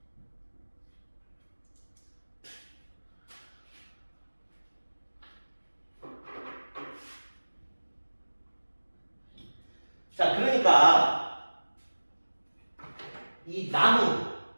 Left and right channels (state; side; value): inverted; both; correlation -1.00